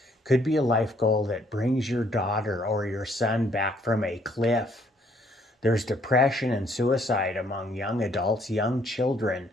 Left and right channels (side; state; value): both; normal; correlation 0.66